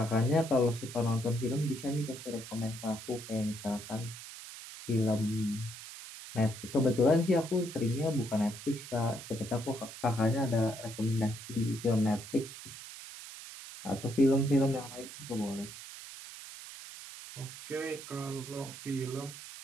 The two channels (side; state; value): right; noise; hiss, 13 dB below the sound